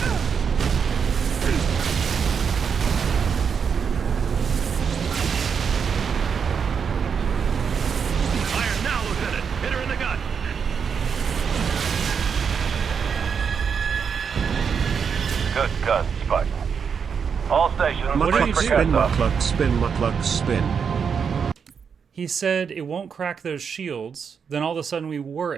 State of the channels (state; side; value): quieter; left; 6.5 dB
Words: Good gun, Spartan. All stations, Mukluk spin, Mukluk spin, Mukluk spin. He said it won't crack those shields. Then all of a sudden we were